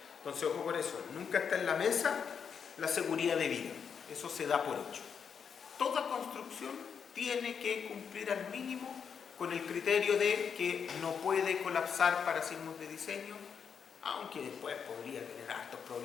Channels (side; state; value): right; quieter; 6.8 dB